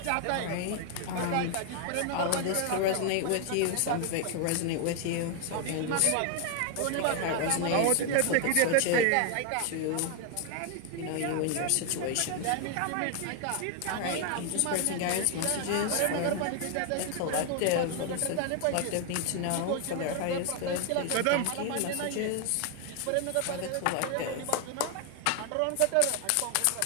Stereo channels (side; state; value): both; different; correlation 0.00